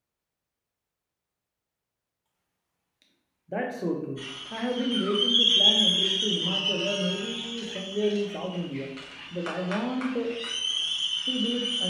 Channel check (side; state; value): both; identical; correlation 1.00